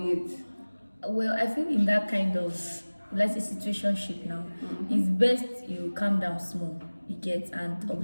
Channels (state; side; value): inverted; both; correlation -1.00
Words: it? Well, I think in that kind of let's say situationship now, it's best you calm down small, you get, and